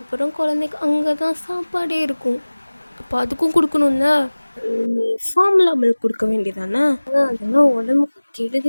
குழந்தைக்கு அங்கே தான் சாப்பாடே இருக்கும். அப்போ அதுக்கும் கொடுக்கணும்ல. நீ ஃபார்முலா மில்க் கொடுக்க வேண்டியதானே? அதெல்லாம் உடம்புக்கு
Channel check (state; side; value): inverted; both; correlation -1.00